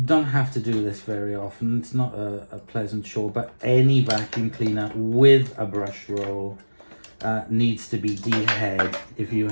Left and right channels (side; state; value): both; inverted; correlation -1.00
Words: have to do this very often. It's not a pleasant chore, but any vacuum cleaner with a brush roll needs to be de-haired if you